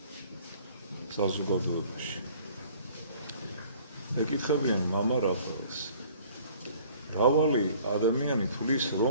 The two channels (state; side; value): inverted; both; correlation -0.54